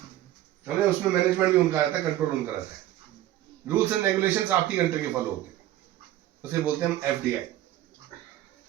उसमें मैनेजमेंट भी उनका रहता है, कंट्रोल उनका रहता है, रूल्स एंड रेगुलेशंस आपकी कंट्री के फॉलो होते हैं, उसे बोलते हैं हम एफडीआई,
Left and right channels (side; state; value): left; quieter; 13.8 dB